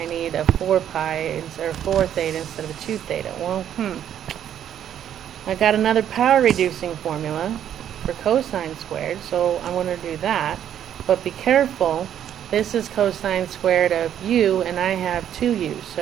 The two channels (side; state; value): left; quieter; 10.0 dB